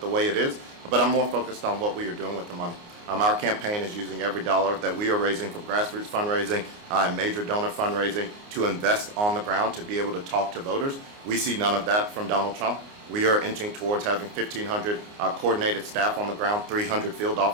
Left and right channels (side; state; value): left; late; 29 ms